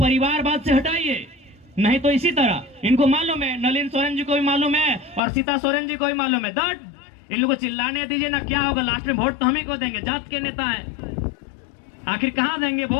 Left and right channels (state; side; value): drops out; right; at 5.2 s